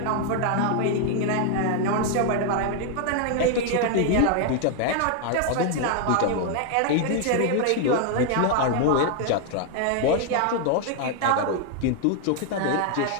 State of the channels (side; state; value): both; different; correlation 0.00